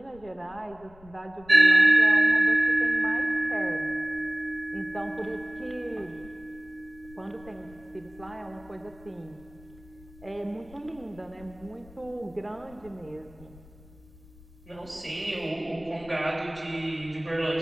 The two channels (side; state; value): left; noise; rumble, 23 dB below the sound